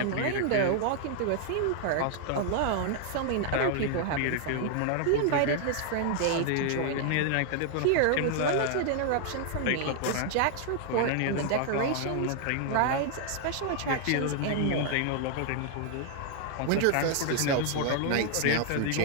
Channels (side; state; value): both; different; correlation 0.00